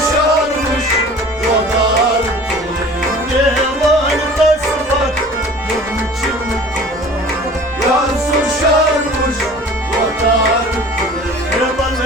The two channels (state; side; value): normal; both; correlation 0.45